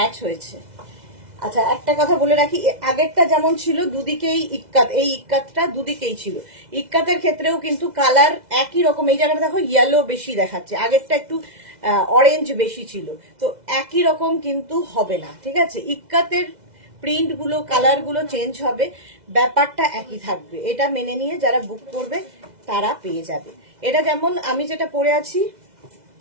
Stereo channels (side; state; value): left; late; 2.0 ms